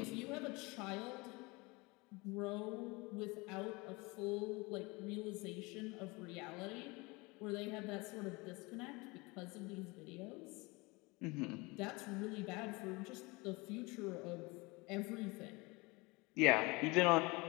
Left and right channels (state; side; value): quieter; right; 25.3 dB